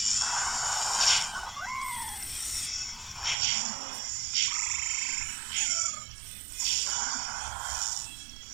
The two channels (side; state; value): left; drops out; at 3.4 s